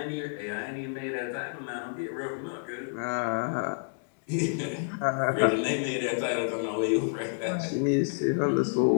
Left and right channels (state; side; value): silent; right; digital silence